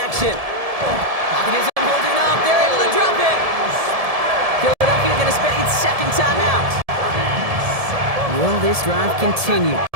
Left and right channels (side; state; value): left; late; 1.7 ms